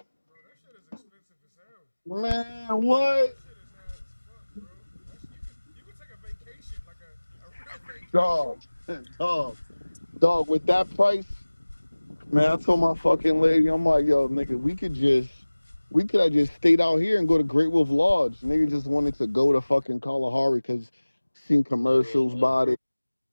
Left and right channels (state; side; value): inverted; both; correlation -1.00